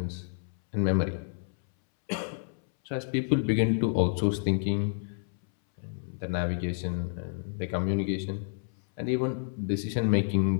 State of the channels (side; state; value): right; silent; 58 dB below the other